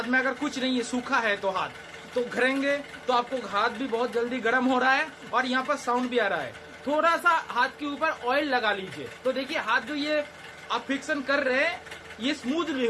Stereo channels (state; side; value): identical; both; correlation 1.00